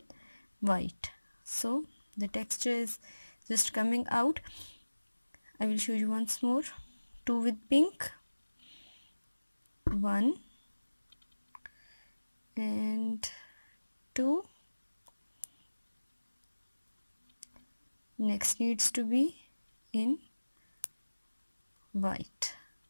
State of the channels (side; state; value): both; inverted; correlation -1.00